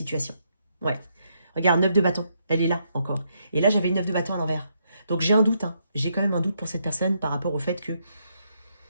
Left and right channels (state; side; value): inverted; both; correlation -0.76